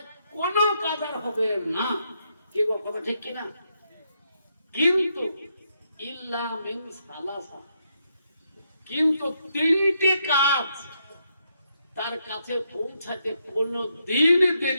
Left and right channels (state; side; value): inverted; both; correlation -0.79